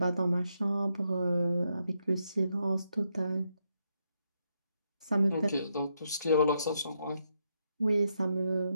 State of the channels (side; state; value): both; inverted; correlation -0.80